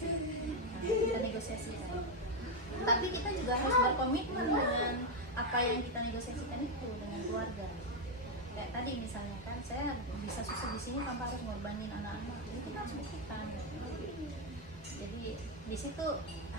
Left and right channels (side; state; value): both; normal; correlation 0.04